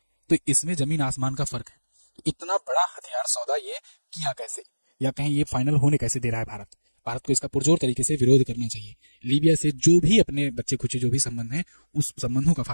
तो इसमें जमीन आसमान का फर्क है। इतना बड़ा हथियार सौदा ये किया कैसे, या कहीं ये फाइनल होने कैसे दे रहा है भारत? भारत को इसका पुरजोर तरीके से विरोध करना चाहिए। लीबिया से जो भी अपने बच्चे खुचे जो भी संबंध हैं, उस संबंधों का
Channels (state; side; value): inverted; both; correlation -1.00